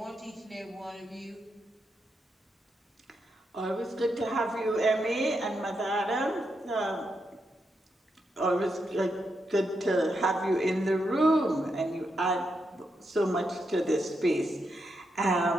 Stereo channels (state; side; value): normal; both; correlation 0.83